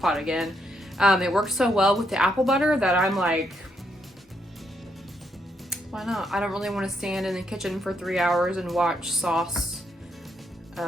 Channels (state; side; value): normal; both; correlation 0.76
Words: pot again. It works so well with the apple butter that I'm like, why not? I don't really want to stand in the kitchen for 3 hours and watch sauce